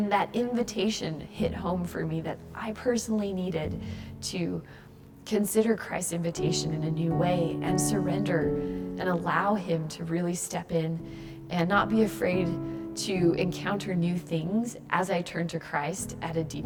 that invitation hit home for me that I personally needed to consider Christ's invitation in a new way and surrender and allow him to really step in and not be afraid to encounter new things as I turn to Christ at a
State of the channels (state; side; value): identical; both; correlation 1.00